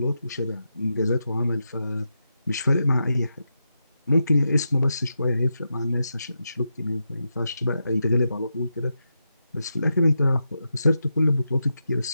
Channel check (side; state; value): both; inverted; correlation -0.87